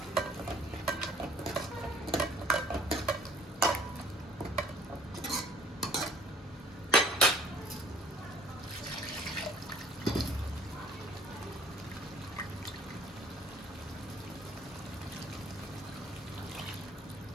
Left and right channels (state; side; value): normal; both; correlation 0.54